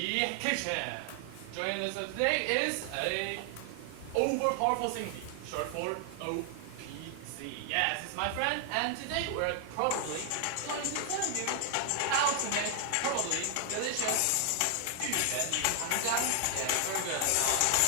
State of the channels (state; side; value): different; both; correlation 0.00